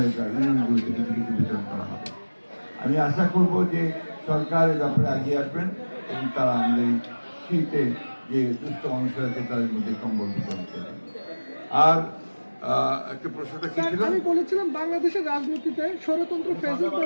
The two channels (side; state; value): both; inverted; correlation -1.00